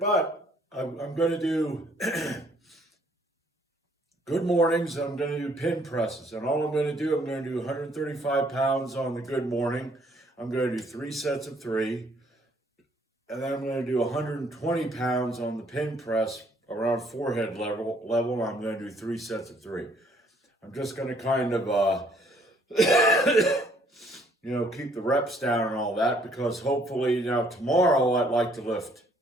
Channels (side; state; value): both; normal; correlation 0.64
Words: I'm going to do good mornings. I'm going to do pin presses, and all I'm going to do, I'm going to do 135 pounds on the good morning. I'm going to do 3 sets of 3, and then I'm going to do 120 pounds on the pin press around forehead level. I'm going to do 3 sets of 3. I'm just going to kind of keep the reps down and all that, because hopefully tomorrow I'd like to lift.